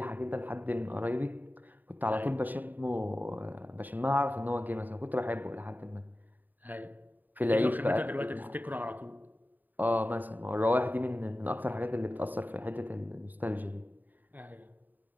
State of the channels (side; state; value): left; late; 0.087 ms